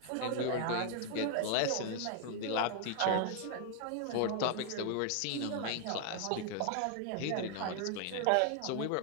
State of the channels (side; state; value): both; different; correlation 0.00